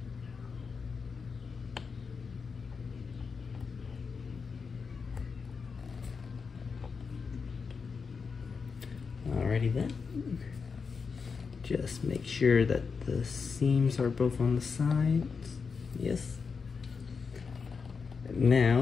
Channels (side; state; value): right; quieter; 5.3 dB